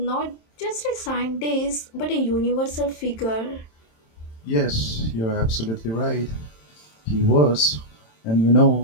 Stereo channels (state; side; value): late; right; 27 ms